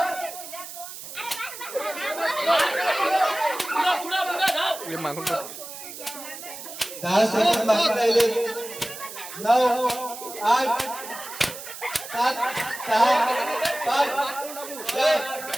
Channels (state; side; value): noise; right; hiss, 11 dB below the sound